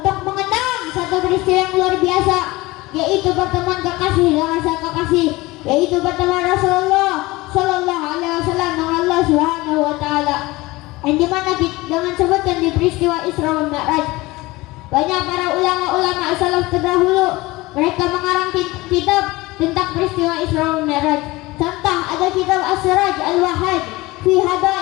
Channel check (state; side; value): quieter; right; 20.7 dB